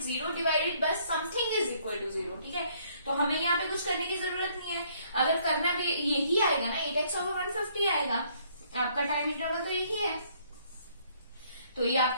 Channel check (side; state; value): both; inverted; correlation -0.65